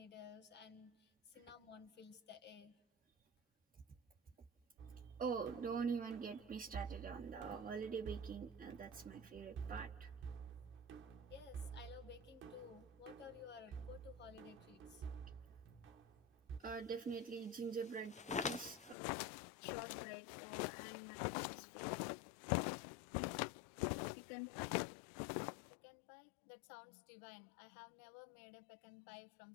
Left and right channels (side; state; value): right; drops out; at 18.9 s